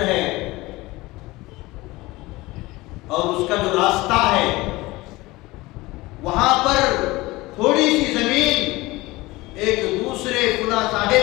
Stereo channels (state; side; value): quieter; right; 20.5 dB